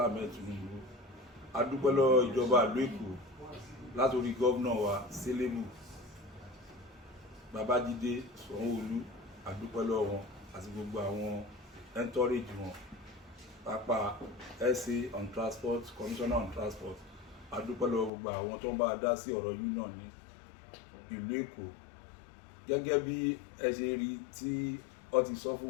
Ahmed Tinubu. A dúpẹ́ lọ́wọ́ ìjọba ìlú Èkó látòrí gómìnà wa Selebu Babájídé Sanwó-Olú. A dúpẹ́ lọ́wọ́ wọn àti gbogbo àwọn entourage wọn, pápá SA on transport, commissioner on transport. A dúpẹ́ lọ́wọ́ gbogbo àwọn tó ń bá dá sí ọ̀rọ̀ union ní ìlú Èkó. Gẹ́gẹ́ bí ẹ ṣe rí tí ó ti sọ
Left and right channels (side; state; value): right; drops out; at 18.1 s